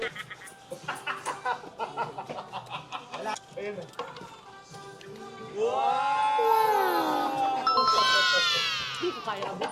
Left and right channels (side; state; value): both; identical; correlation 1.00